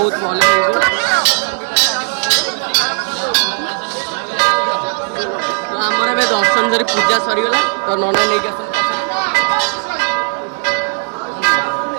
भल तो आमर ए दर्शन सरी पूजा सरीगला तो नना नहीं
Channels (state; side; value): silent; left; 66 dB below the other